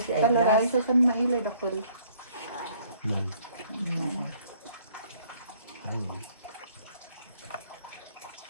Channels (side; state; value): both; inverted; correlation -0.62